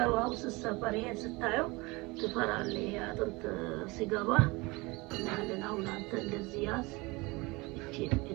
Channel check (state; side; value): quieter; left; 24.4 dB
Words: አሁን ስትሰበር ይሄን ስታየው ትፈራለህ። ይሄ አጥንት ሲገባ እናለን። አሁን አንተ እንደዚህ ያዝ። እቺ